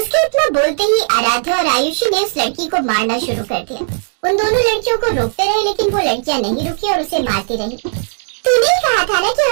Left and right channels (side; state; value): left; silent; digital silence